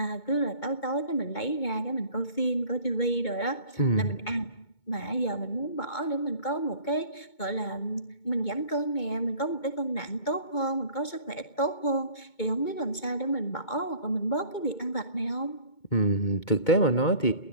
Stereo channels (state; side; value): late; right; 2.2 ms